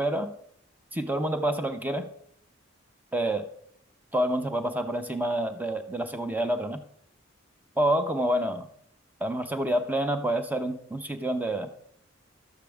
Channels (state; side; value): normal; both; correlation 0.74